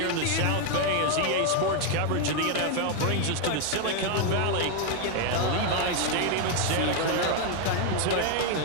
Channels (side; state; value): both; different; correlation 0.01